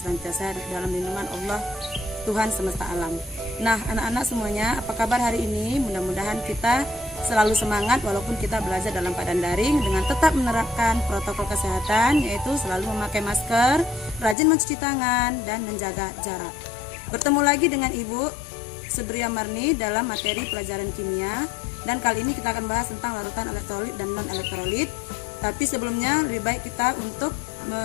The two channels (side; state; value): right; drops out; at 14.4 s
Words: dalam lindungan Allah Tuhan semesta alam. Nah anak-anak semuanya, apa kabar hari ini? Mudah-mudahan kita selalu semangat walaupun kita belajar dalam keadaan daring dengan tetap menerapkan protokol kesehatan, yaitu selalu memakai masker, rajin mencuci tangan dan menjaga jarak. Bertemu lagi dengan Ibu Sudria Marni dalam materi pelajaran kimia, dan kali ini kita akan bahas tentang larutan elektrolit dan non elektrolit. Tapi sebelumnya lebih baik kita untuk